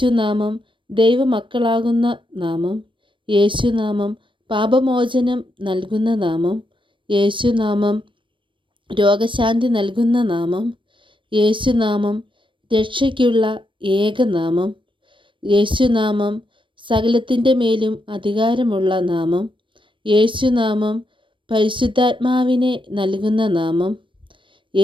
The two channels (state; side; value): late; left; 0.24 ms